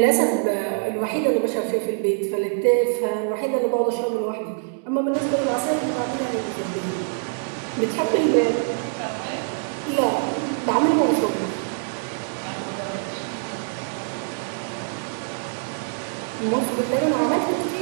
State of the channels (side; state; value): left; silent; digital silence